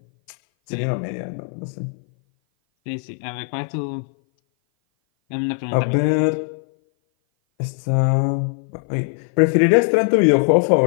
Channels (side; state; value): right; silent; 58 dB below the other